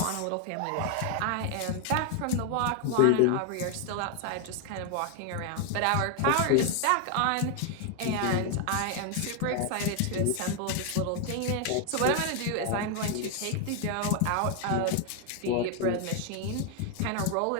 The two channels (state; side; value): different; both; correlation 0.01